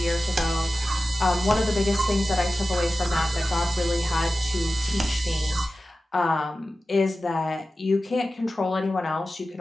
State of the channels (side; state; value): both; normal; correlation 0.94